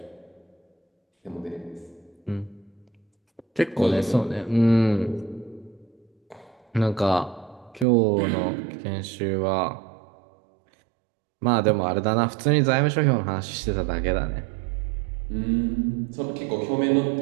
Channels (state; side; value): drops out; left; at 7.9 s